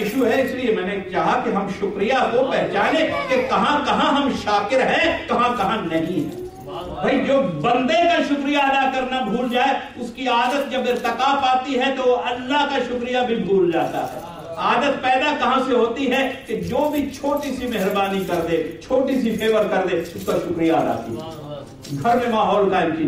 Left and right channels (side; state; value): both; identical; correlation 1.00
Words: ہے، اس لیے میں نے چاہا کہ ہم شکریہ کو پہچانے کہ کہاں کہاں ہم شاکر ہیں، کہاں کہاں نہیں ہیں۔ بھائی جو بندے کا شکریہ ادا کرنا بھول جائے، اس کی عادت جب ارتقا پاتی ہے تو اللہ کا شکریہ بھی بھول جاتا ہے۔ عادت پیدا کہاں سے ہوتی ہے کہ جو بھی چھوٹی سی مہربانی کر دے، چھوٹی سی فیور کر دے، اس کا شکریہ ادا کیجیے۔ گھر میں ماحول قائم